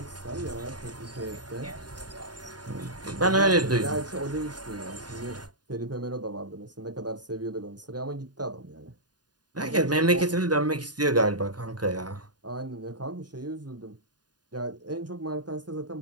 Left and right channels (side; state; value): left; late; 0.69 ms